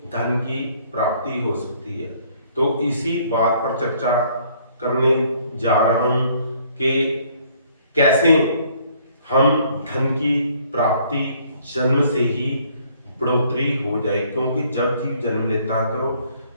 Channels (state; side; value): inverted; both; correlation -0.62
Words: धन की प्राप्ति हो सकती है। तो इसी बात पर चर्चा करने जा रहा हूं कि कैसे हम धन की प्राप्ति जन्म से ही बढ़ोतरी हो जाए, क्योंकि जब जीव जन्म लेता है तो